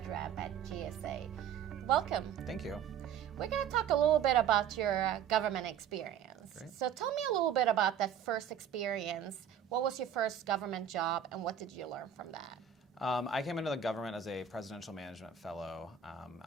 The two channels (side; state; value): left; quieter; 8.5 dB